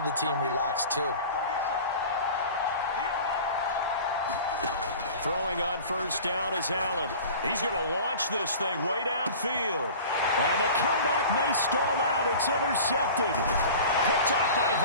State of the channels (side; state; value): both; inverted; correlation -0.40